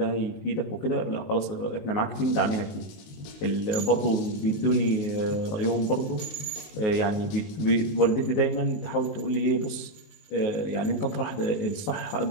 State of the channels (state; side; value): late; right; 19 ms